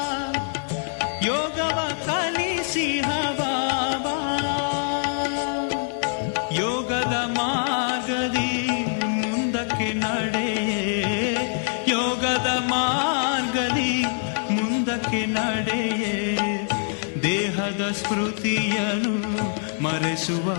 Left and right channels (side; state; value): right; silent; 62 dB below the other